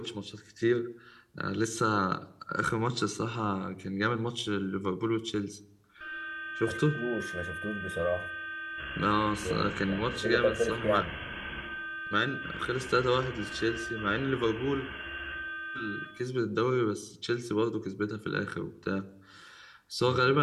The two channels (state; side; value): identical; both; correlation 1.00